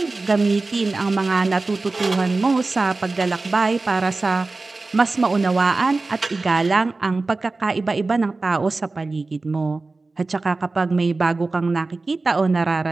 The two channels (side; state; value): left; quieter; 3.5 dB